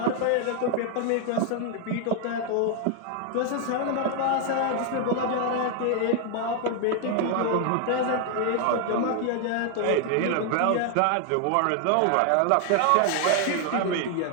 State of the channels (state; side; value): different; both; correlation 0.00